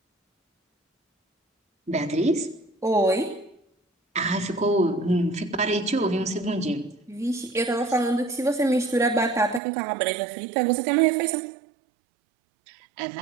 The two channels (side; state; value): left; drops out; at 9.6 s